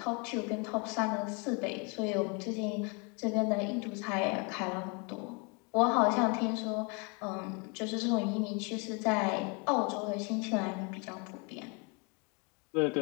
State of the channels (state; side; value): quieter; right; 32.9 dB